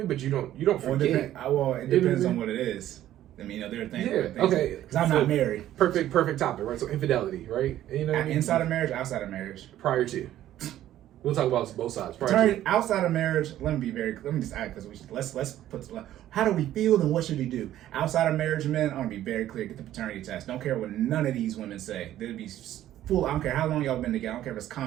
But you don't forget. Well, it depends on what it is. I mean, there are things. Yeah. Okay. Because I'm not married. Perfect topic, right? So infidelity, right? You know what I mean? Inside of marriage, outside of marriage. Prior to. We'll talk about both sides. Outside of marriage, let me just add, because let's put, how do we feel and what should we do? Outside of marriage, men, I want to be very clear. Get the paternity test. Don't care what none of these women say. They'd be full. I don't care how long y'all been together. I don't care if it's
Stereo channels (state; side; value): quieter; left; 12.8 dB